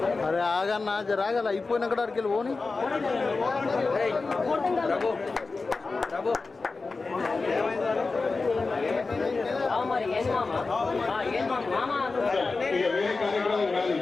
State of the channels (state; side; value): quieter; right; 3.9 dB